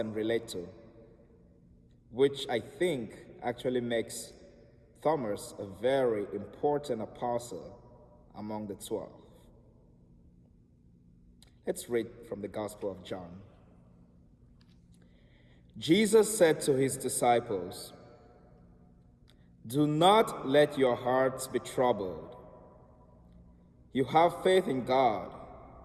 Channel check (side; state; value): both; identical; correlation 1.00